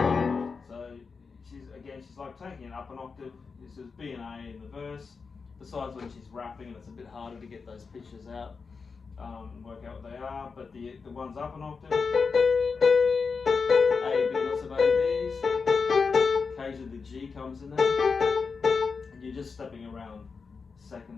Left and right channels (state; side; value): quieter; right; 5.0 dB